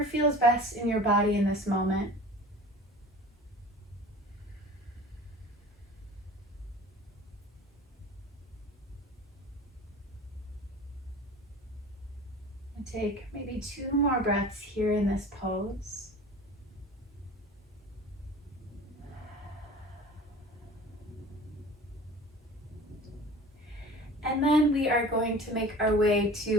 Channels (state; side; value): normal; both; correlation 0.41